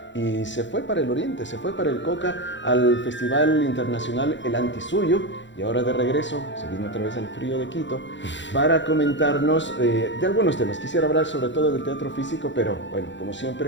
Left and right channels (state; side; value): late; right; 0.54 ms